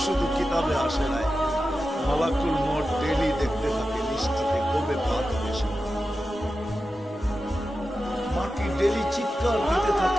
শুধু কিতাবে আসে নাই মালাকুল মউত ডেইলি দেখতে থাকে লিস্টিতে কবে বাদ বেশি মাটি ডেইলি চিৎকার দিতে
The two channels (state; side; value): normal; both; correlation 0.92